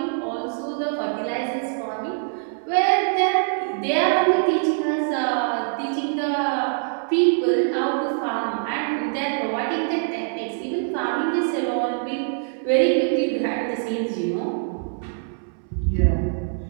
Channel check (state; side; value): silent; left; digital silence